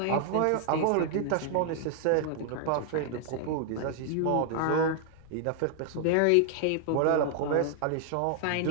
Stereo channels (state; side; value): different; both; correlation 0.00